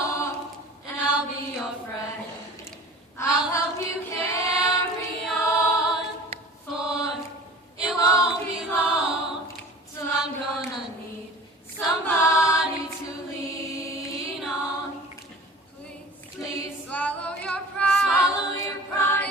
and I'll be your friend. I'll help you carry on, for it won't be long till I'm gonna need somebody to lean on. Please swallow your pride. Swallow your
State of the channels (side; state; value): both; normal; correlation 0.41